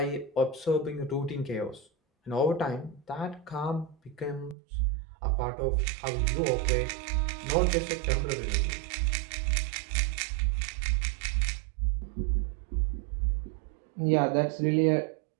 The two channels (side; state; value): left; drops out; at 4.5 s